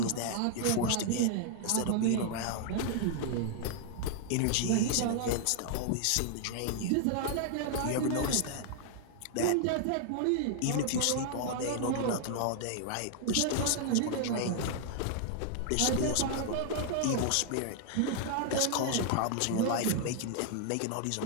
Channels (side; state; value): both; different; correlation 0.00